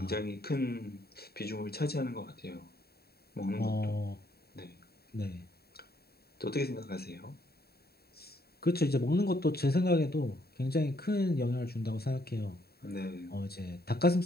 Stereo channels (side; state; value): right; late; 0.46 ms